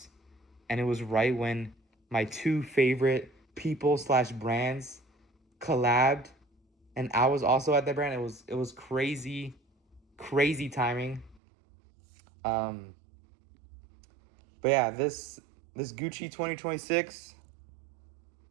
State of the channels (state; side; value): drops out; left; at 11.4 s